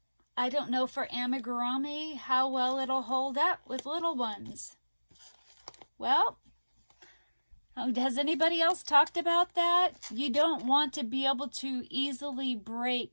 I don't know for amigurumi how well it'll hold up with little ones. Well, has anybody else talked about that? You don't want to be able to easily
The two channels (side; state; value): both; inverted; correlation -1.00